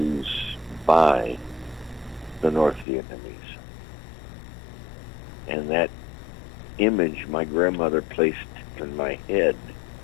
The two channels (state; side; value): drops out; right; at 2.9 s